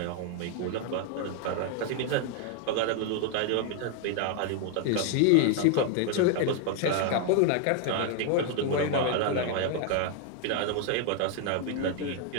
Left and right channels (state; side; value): different; both; correlation 0.00